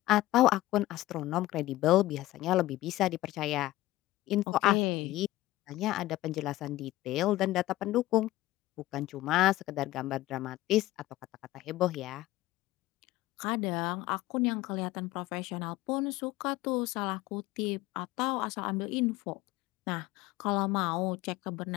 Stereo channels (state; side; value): quieter; right; 16.6 dB